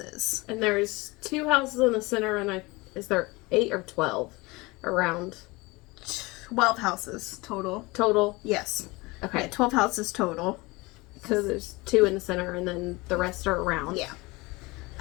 And there's 2 houses in the center, and is there 8 or 12 around? 12 houses total. Total? Yes. Okay. Yeah, 12 houses total. So there's 2 in the center, and then the rest are around. Yeah.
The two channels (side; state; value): right; quieter; 23.5 dB